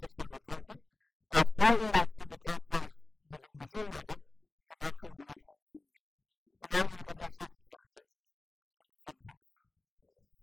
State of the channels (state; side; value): quieter; right; 3.1 dB